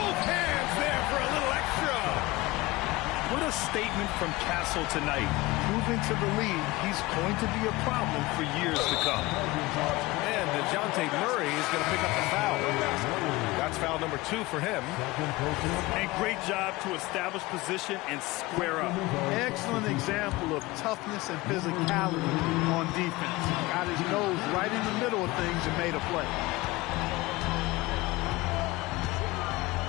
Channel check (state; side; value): quieter; right; 20.7 dB